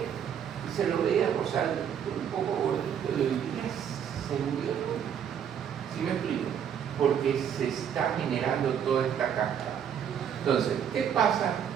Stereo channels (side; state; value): left; quieter; 8.5 dB